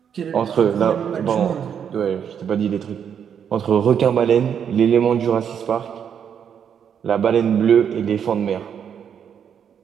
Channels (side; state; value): left; quieter; 8.0 dB